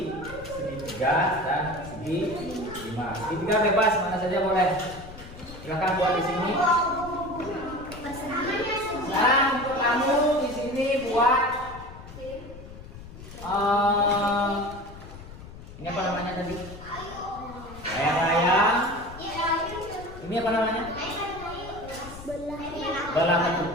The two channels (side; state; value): left; noise; rumble, 15 dB below the sound